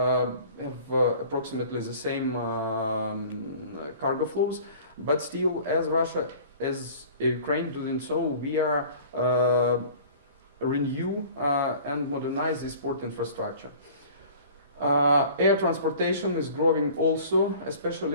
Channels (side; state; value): both; inverted; correlation -0.46